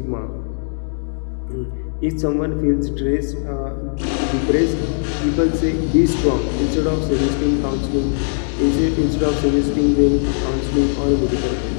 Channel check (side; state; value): right; silent; digital silence